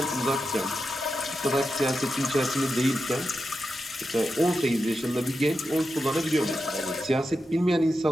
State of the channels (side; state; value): both; normal; correlation 0.88